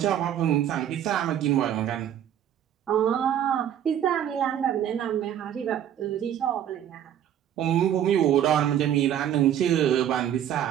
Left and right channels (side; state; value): left; quieter; 10.3 dB